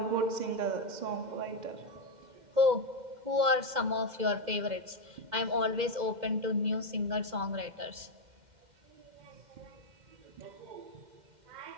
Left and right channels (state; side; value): late; left; 2.1 ms